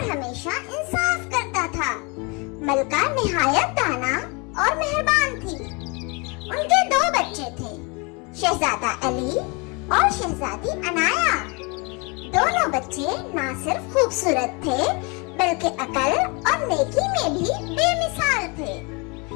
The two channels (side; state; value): right; quieter; 30.0 dB